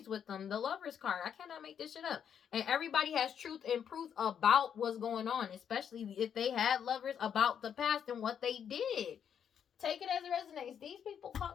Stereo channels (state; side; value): quieter; right; 8.2 dB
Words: with them. The Lover's card. I cannot make this shit up. And everybody has truth and proof about what's going on, especially if they had lovers, about the past and what they did. Take it as it resonates. These people